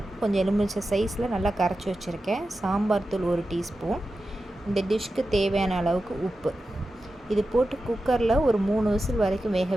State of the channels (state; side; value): normal; both; correlation 0.92